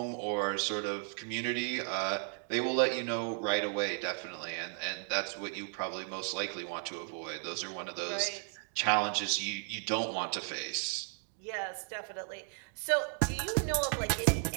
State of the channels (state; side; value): silent; left; 55 dB below the other